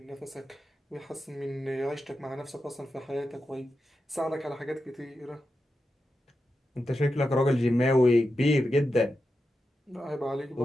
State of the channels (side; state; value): both; normal; correlation 0.89